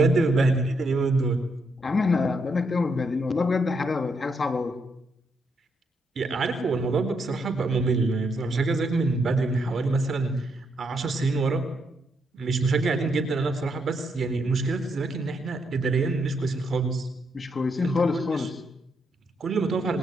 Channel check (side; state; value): both; normal; correlation 0.77